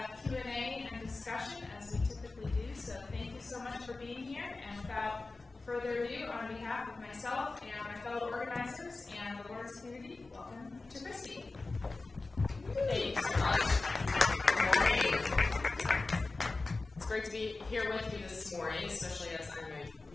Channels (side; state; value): right; quieter; 3.5 dB